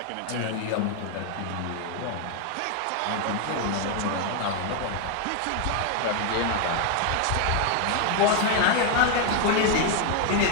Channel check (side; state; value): both; different; correlation 0.01